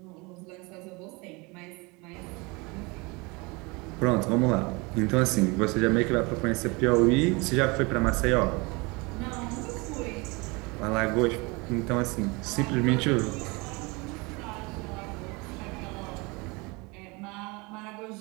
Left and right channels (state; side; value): quieter; left; 26.6 dB